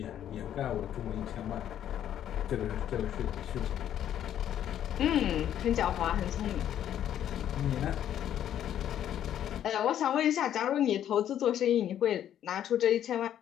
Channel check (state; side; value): quieter; right; 10.6 dB